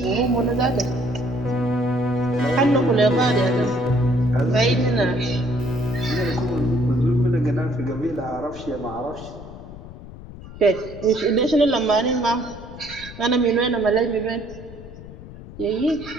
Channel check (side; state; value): left; noise; rumble, 15 dB below the sound